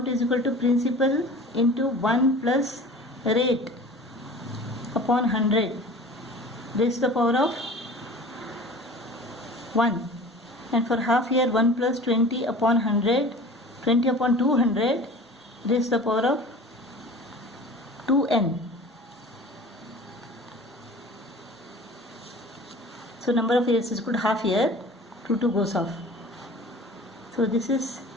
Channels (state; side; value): normal; both; correlation 0.42